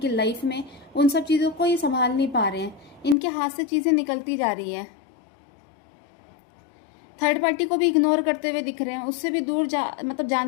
लाइफ में, उन सब चीज़ों को ये संभाल नहीं पा रहे हैं। इनके हाथ से चीज़ें निकलती जा रही है। थर्ड पार्टी को भी इग्नोर करते हुए दिख रहे हैं, उससे भी दूर मतलब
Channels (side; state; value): right; drops out; at 3.2 s